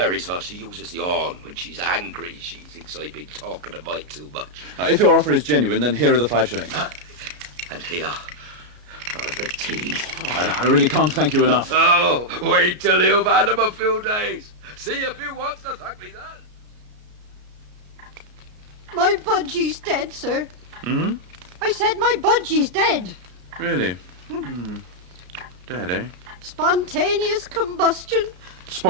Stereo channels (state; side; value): late; left; 33 ms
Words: sir. She uses the horn when she's angry. She thinks I've been talking a mite too much. If your offer is genuine, then here are the 5 shillings. And here, for the tea. I really can't thank you enough. Oh, wait till you've had them a few days. See if you want to thank me then. My budgie's dead, sir. Hmm? I said my budgie's dead. Really? Dead, eh? Spontaneous combustion.